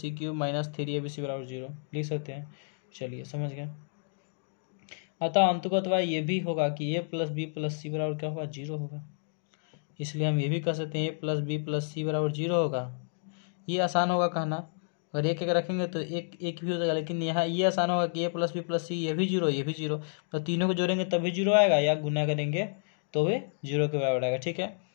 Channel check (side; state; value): right; silent; digital silence